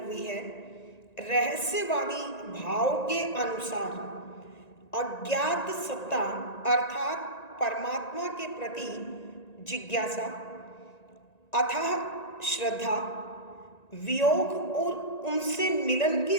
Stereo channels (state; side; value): late; right; 1.9 ms